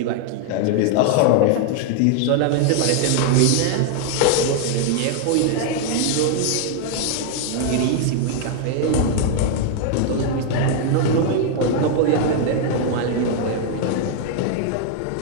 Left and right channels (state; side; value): different; both; correlation 0.00